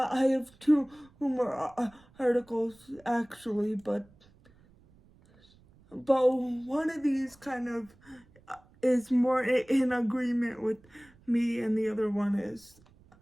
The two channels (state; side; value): noise; right; rumble, 28 dB below the sound